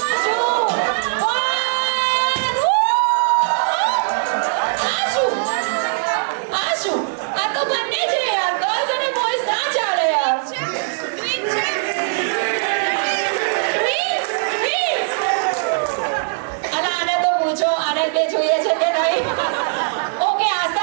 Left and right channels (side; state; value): left; silent; 66 dB below the other